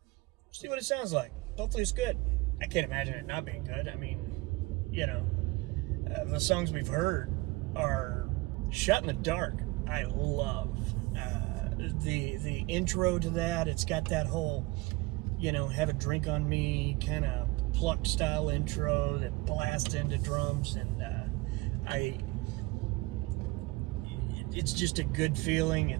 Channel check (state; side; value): quieter; left; 22.7 dB